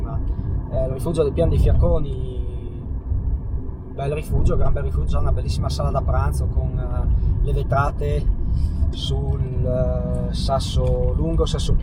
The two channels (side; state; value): both; identical; correlation 1.00